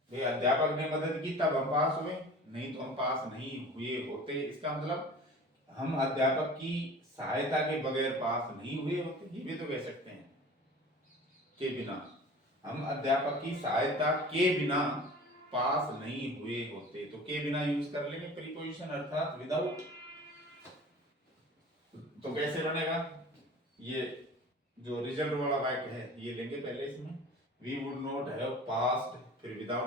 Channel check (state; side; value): normal; both; correlation 0.41